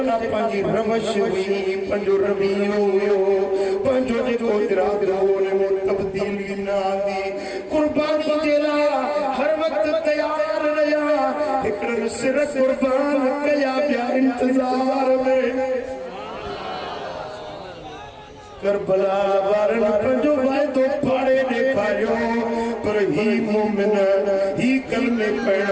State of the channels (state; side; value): identical; both; correlation 1.00